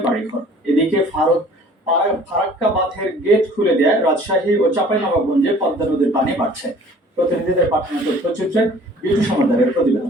বাড়িঘর। এদিকে ফারাক্কা বাঁধের গেট খুলে দেয় রাজশাহী ও চাঁপাইনবাবগঞ্জে পদ্মা নদীর পানি বাড়ছে। প্রতিনিধিদের পাঠানো তথ্যচিত্রে বিটু সমাদারের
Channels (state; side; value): normal; both; correlation 0.51